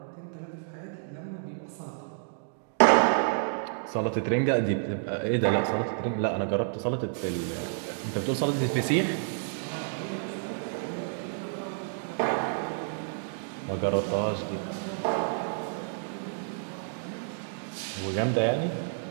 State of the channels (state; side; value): silent; left; digital silence